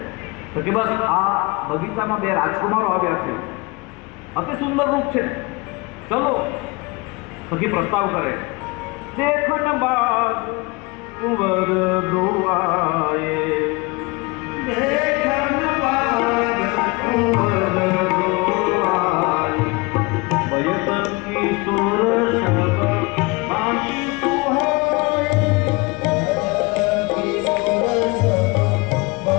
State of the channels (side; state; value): right; quieter; 26.0 dB